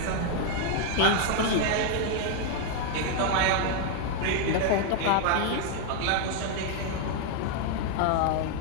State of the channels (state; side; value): different; both; correlation 0.00